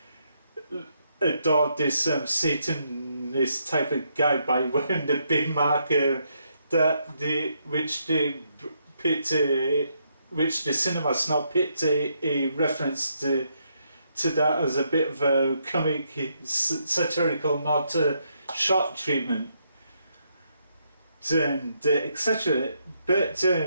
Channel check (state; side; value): inverted; both; correlation -0.77